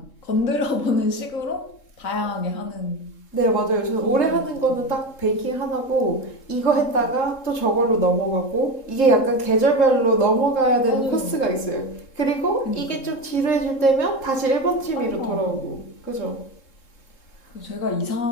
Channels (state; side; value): late; right; 3.7 ms